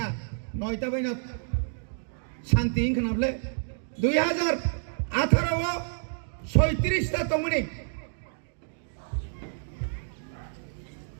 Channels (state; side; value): silent; left; digital silence